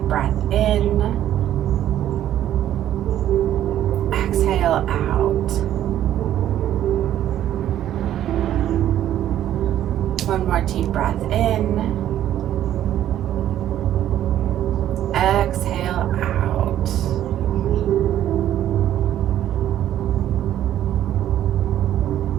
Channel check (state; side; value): quieter; left; 11.8 dB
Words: breath in. Exhale out. One more deep breath in. Exhale out.